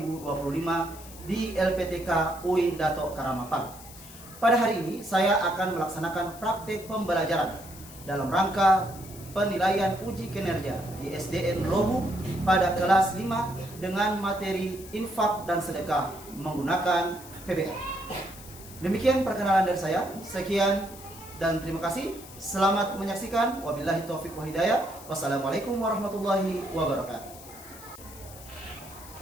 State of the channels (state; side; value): noise; left; hiss, 17 dB below the sound